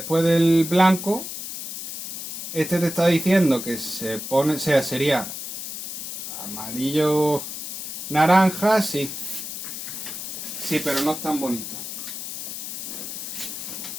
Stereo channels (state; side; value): noise; left; hiss, 7 dB below the sound